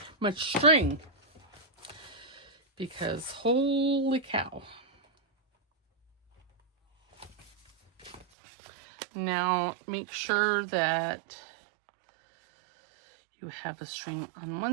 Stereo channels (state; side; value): drops out; left; at 8.2 s